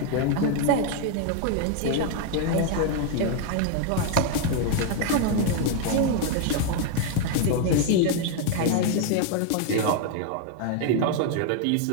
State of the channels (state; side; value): different; both; correlation 0.01